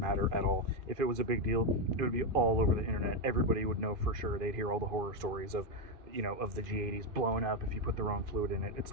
at all. If it was a big deal, it would be all over the internet. Everybody would know for sure. They'd hear all the horror stories of, of the G80s blowing up if you put the wrong fluid in it. It's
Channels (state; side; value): late; left; 2.3 ms